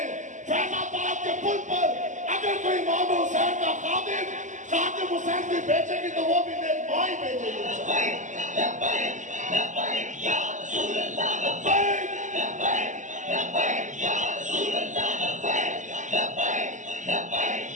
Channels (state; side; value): late; left; 0.36 ms